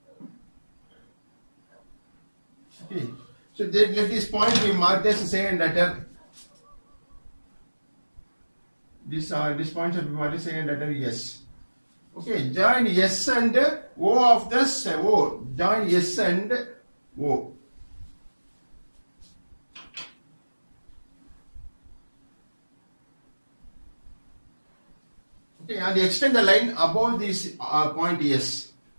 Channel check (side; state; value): both; inverted; correlation -1.00